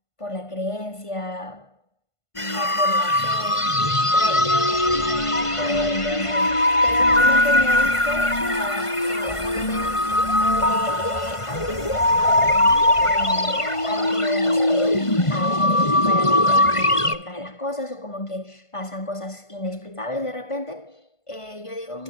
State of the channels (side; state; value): right; late; 1.5 ms